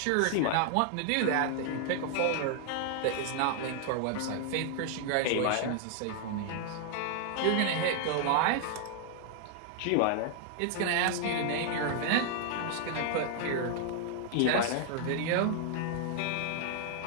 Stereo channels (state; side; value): different; both; correlation 0.00